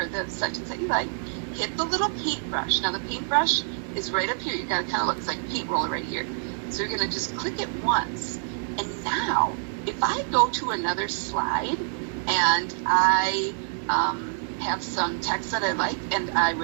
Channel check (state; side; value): silent; left; digital silence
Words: the sentence that you like, hit the little paintbrush. Now the paintbrush is right up here. You got to kind of look, it's like a paint roller right here. So you're going to just click it once. And now, if I go to another slide and I have some text that I like, and I